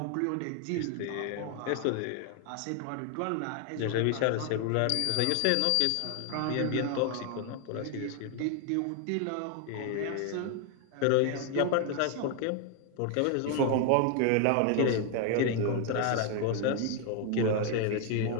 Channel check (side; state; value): both; different; correlation 0.00